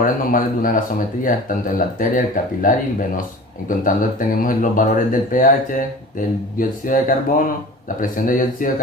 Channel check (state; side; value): normal; both; correlation 0.39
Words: normales de una gasometría, tanto en la arteria, el capilar y el venoso. En contando tenemos los valores del pH, del dióxido de carbono, la presión de dióxido de